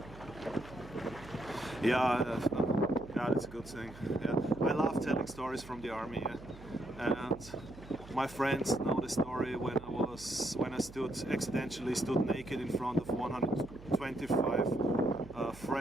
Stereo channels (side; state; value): right; noise; hum, 17 dB below the sound